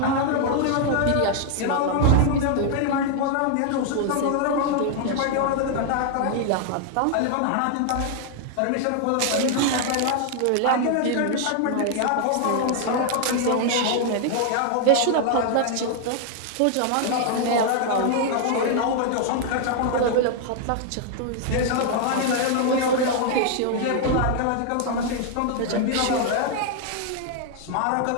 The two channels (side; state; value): both; different; correlation 0.00